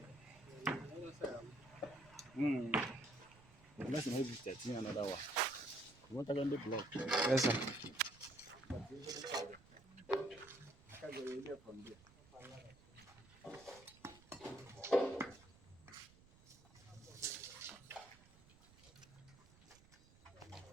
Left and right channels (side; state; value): right; noise; rumble, 24 dB below the sound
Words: Let's maybe 13 another one. You want to get the block? Yes sir. Can go in there from there.